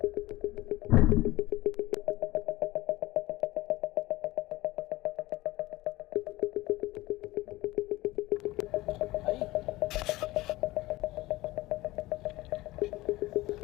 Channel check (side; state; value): right; quieter; 18.8 dB